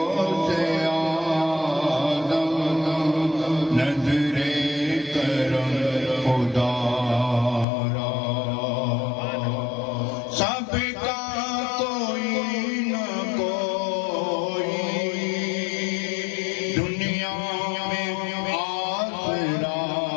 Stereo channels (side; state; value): right; drops out; at 7.7 s